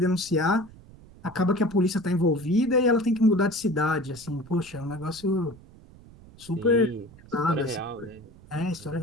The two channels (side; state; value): right; noise; rumble, 22 dB below the sound